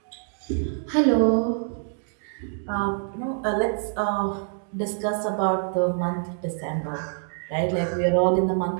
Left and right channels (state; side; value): silent; left; digital silence